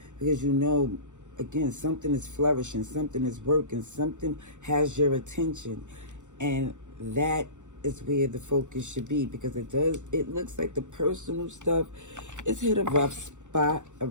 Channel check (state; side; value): late; left; 0.85 ms